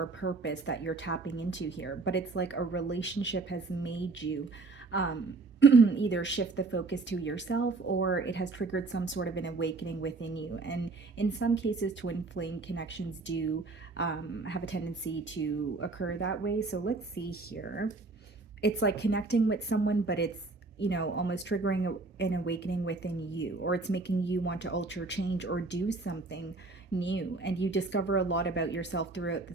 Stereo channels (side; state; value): left; quieter; 3.7 dB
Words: purpose that you're tapping into here. But it's like a relationship has made you either shift the focus to yourself, or it has triggered some sort of an awakening within you. And in some cases, twin flame connections do have a tendency to occur that way. So let's see here. It's like connecting with someone, but it's almost triggering an awakening within you, or it's making you want to alter, change, or do something new. And you discover a lot about yourself throughout